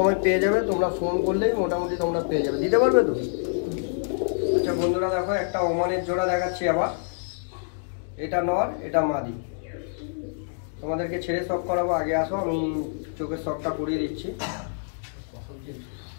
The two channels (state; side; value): silent; right; digital silence